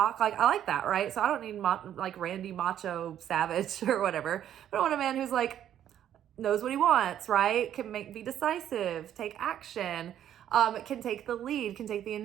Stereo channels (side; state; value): left; quieter; 10.7 dB